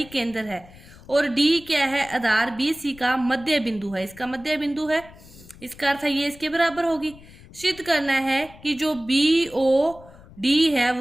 है, और D क्या है, आधार BC का मध्य बिंदु है। इसका मध्य बिंदु है, इसका अर्थ है ये इसके बराबर होगी। सिद्ध करना है कि जो BOD है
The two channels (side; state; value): left; noise; rumble, 21 dB below the sound